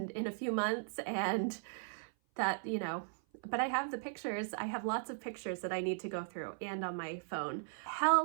in a few months, and that, but I have the pictures. I have lots of pictures that I need to go through and on my phone.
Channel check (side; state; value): left; silent; 53 dB below the other